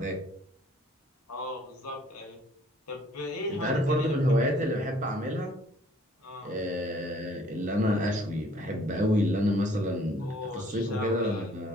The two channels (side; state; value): both; normal; correlation 0.59